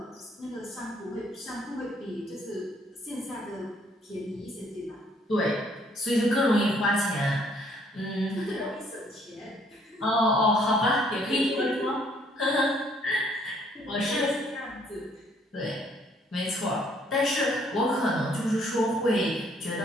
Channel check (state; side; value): normal; both; correlation 0.64